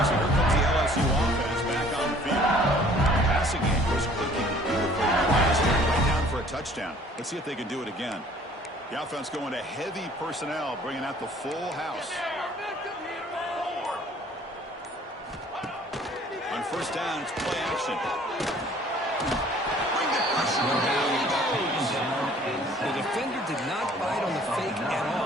so here comes the LSU offense back on the field. Passing game was clicking beautifully last year, right down for a touchdown. Let's see if they can do it again. The offense going to heavy personnel, bringing out the full house. On first down, it's play action. Bring the pressure down. He goes. The defender did not bite on the fake at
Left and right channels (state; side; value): normal; both; correlation 0.54